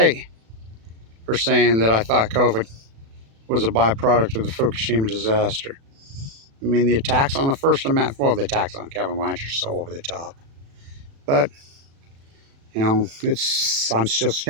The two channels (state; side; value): late; left; 36 ms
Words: for saying that I thought COVID was a byproduct of the Fukushima disaster. I mean, the attacks on the First Amendment, well, the attacks on Kevin Blanch are so over the top. But, you know, I'm still